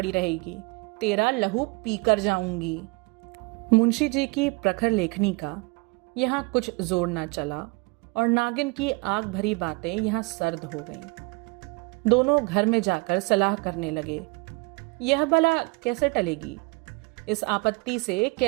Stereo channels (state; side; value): quieter; left; 27.6 dB